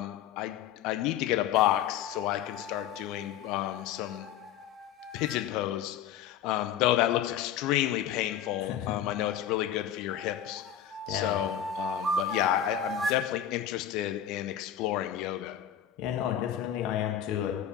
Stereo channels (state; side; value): quieter; right; 10.0 dB